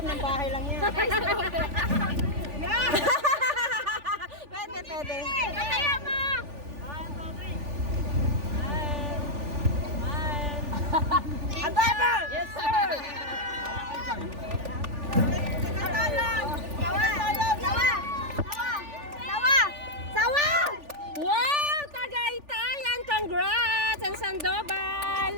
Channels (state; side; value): late; left; 3.4 ms